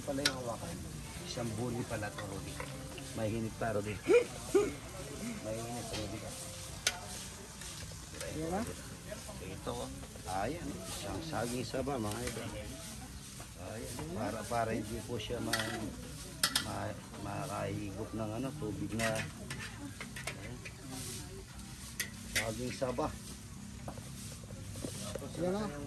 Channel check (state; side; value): identical; both; correlation 1.00